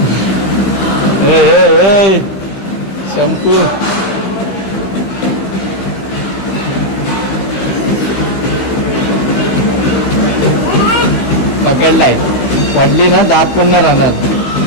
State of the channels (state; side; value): late; right; 15 ms